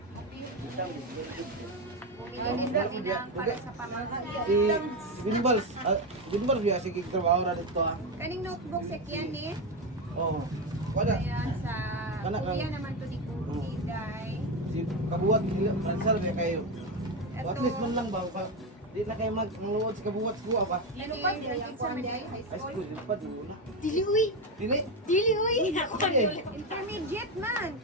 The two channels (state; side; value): normal; both; correlation 0.12